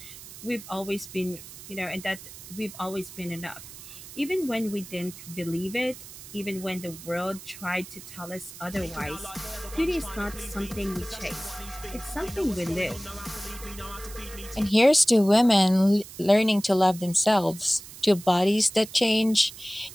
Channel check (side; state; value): right; noise; hiss, 15 dB below the sound